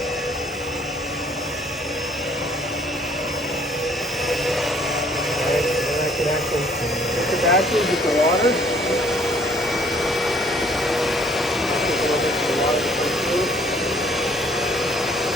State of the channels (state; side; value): normal; both; correlation 0.59